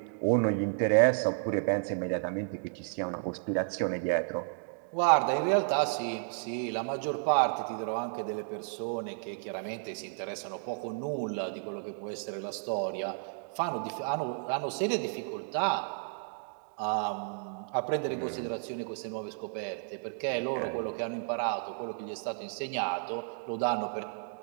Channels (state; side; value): silent; left; digital silence